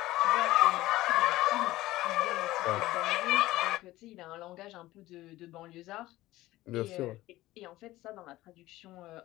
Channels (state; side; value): quieter; right; 17.0 dB